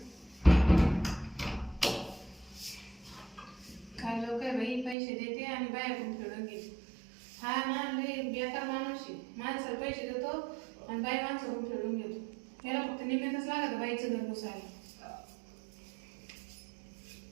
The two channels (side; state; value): left; drops out; at 5.0 s